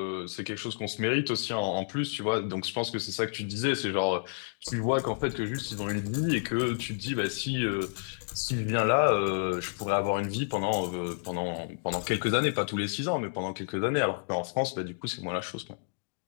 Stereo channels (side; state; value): right; silent; digital silence